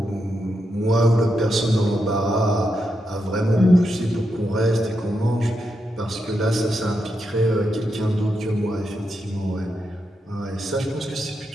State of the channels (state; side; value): normal; both; correlation 0.84